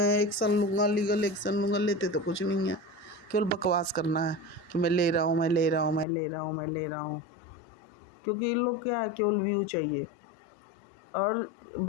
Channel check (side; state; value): right; drops out; at 6.1 s